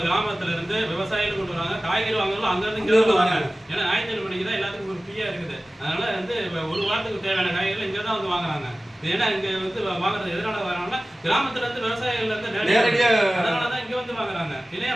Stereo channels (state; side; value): normal; both; correlation 0.97